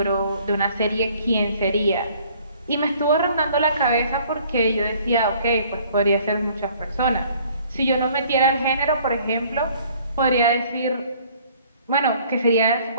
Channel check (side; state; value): both; inverted; correlation -0.57